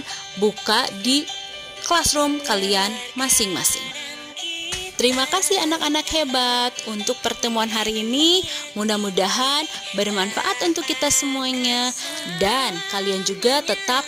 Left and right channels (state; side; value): identical; both; correlation 1.00